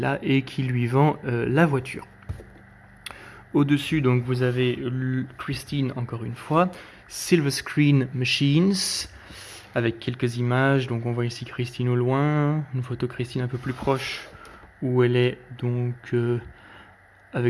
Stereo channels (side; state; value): both; identical; correlation 1.00